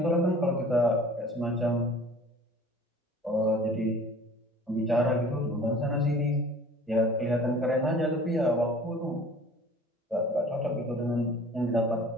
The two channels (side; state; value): both; normal; correlation 0.47